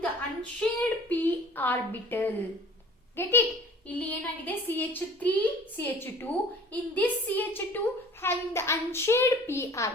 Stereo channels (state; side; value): normal; both; correlation 0.47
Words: the unshared p orbital. Get it? ಇಲ್ಲಿ ಏನಾಗಿದೆ? CH3 CH2. In this CH2 having the unshared p